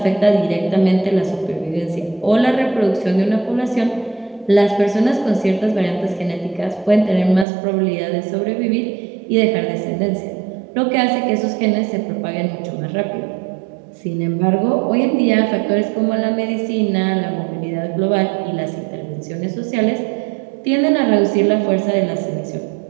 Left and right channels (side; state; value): left; drops out; at 7.5 s